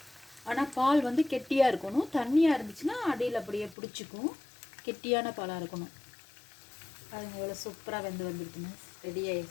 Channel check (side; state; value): right; drops out; at 3.8 s